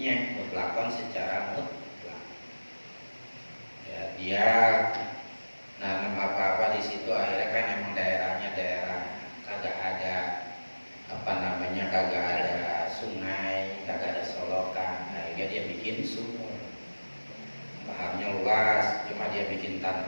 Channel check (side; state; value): both; inverted; correlation -1.00